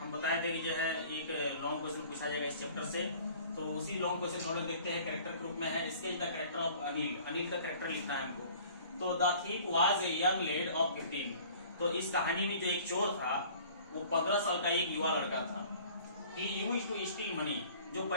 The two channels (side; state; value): both; inverted; correlation -0.49